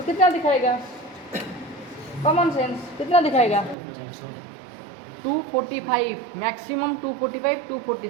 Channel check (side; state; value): left; drops out; at 3.8 s